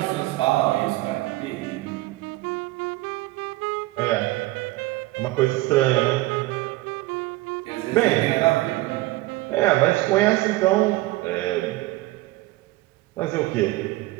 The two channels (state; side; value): quieter; left; 19.0 dB